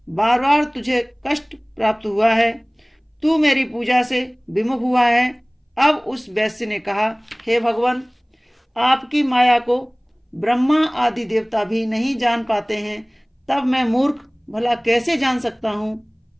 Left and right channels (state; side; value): identical; both; correlation 1.00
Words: बार बार तुझे कष्ट प्राप्त हुआ है, तू मेरी पूजा से विमुख हुआ है। अब उस वैश्य ने कहा, हे भगवान, आपकी माया को ब्रह्मा आदि देवता भी नहीं जान पाते हैं, तब मैं मूर्ख भला कैसे जान सकता हूँ?